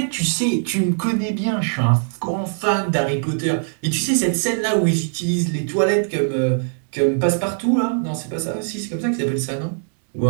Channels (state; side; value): silent; left; digital silence